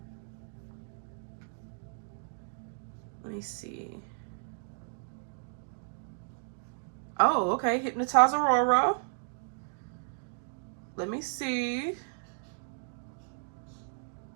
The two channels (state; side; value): silent; left; digital silence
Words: Let me see. Oh, okay. Hypnotize Aurora. Let me see.